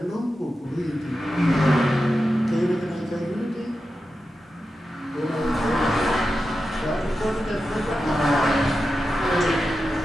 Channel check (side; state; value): both; normal; correlation 0.91